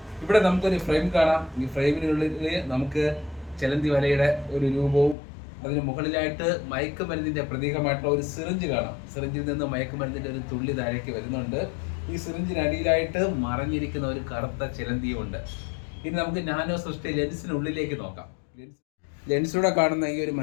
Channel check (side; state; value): right; drops out; at 5.2 s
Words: ഇവിടെ നമുക്കൊരു ഫ്രെയിം കാണാം. ഈ ഫ്രെയിമിനുള്ളിൽ നമുക്ക് ചിലന്തി വലയുടെ ഒരു രൂപവും അതിന് മുകളിലായിട്ട് മയക്കുമരുന്നിന്റെ പ്രതീകമായിട്ടുള്ള ഒരു സിറിഞ്ച് കാണാം. സിറിഞ്ചിൽ നിന്ന് മയക്കുമരുന്നിന്റെ ഒരു തുള്ളി താഴേക്ക് വരുന്നുണ്ട്. ഈ സിറിഞ്ചിനടിയിലായിട്ട് മറഞ്ഞിരിക്കുന്ന ഒരു കറുത്ത ചിലന്തിയും ഉണ്ട്. ഇനി നമുക്ക് നാനോ സൃഷ്ടി ലെൻസിനുള്ളിലേക്ക് നോക്കാം. ലെൻസിലൂടെ കാണുന്ന ഈ ഒരു